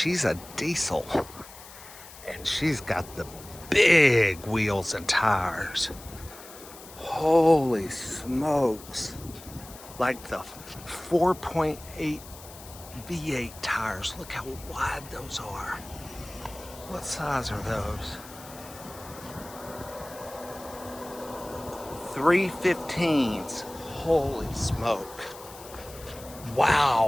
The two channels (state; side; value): noise; left; hiss, 17 dB below the sound